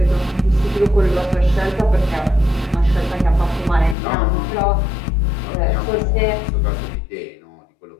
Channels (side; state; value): right; drops out; at 4.0 s